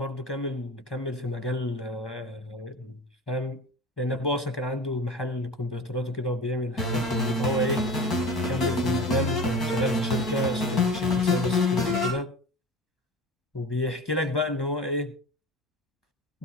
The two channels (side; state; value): both; normal; correlation 0.34